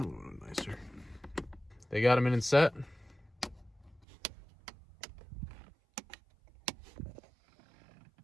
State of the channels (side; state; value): left; drops out; at 4.0 s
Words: would look nicer. They got them in and set.